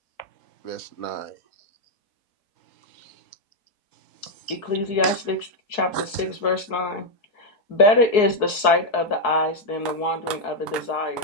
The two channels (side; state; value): right; late; 4.7 ms